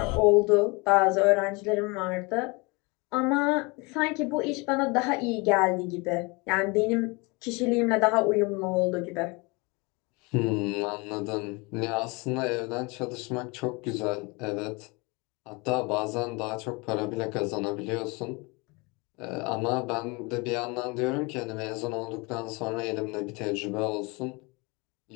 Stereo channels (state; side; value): quieter; right; 27.5 dB